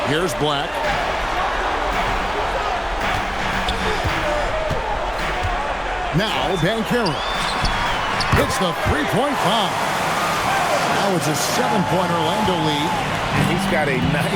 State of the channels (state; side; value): identical; both; correlation 1.00